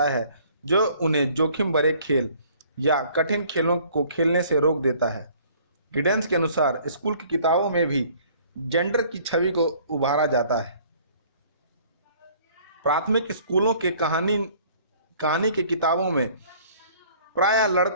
है जो उन्हें जोखिम भरे खेल या कठिन खेलों को खेलने से रोक देता है। गिडेंस के अनुसार स्कूल की किताबों में भी जेंडर की छवि को उभारा जाता है। प्राथमिक स्कूलों के कहानी के किताबों में प्रायः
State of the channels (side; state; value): both; inverted; correlation -0.56